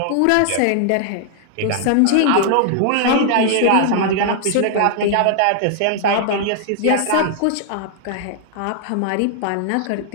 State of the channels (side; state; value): both; different; correlation -0.01